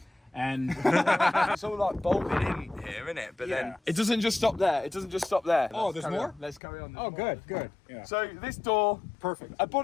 And It's all like bolted in here, isn't it? But then Yeah. it doesn't just stop there. It doesn't just stop there. Oh, Let's there's carry more? on. Let's carry on. There's oh, more. good. Yeah. So this door, Perfect. a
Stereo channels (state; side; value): drops out; right; at 6.6 s